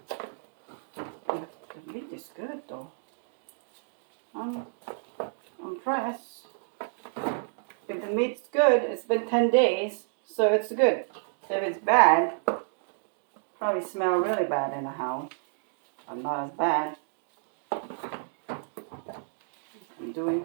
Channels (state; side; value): silent; left; digital silence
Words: The meat is good though. I'm impressed. If the meat's good, it's been 10 days, so it's good. If it's bad, probably smell really bad in the house. I'm not as bad. I'm doing